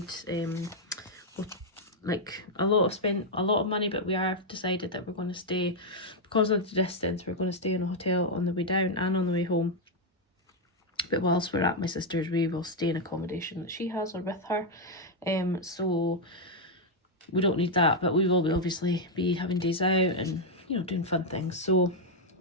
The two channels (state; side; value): normal; both; correlation 0.00